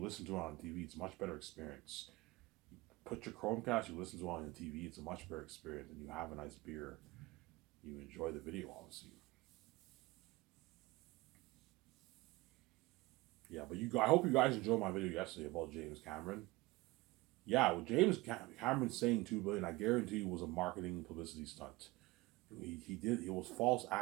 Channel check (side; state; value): left; quieter; 21.2 dB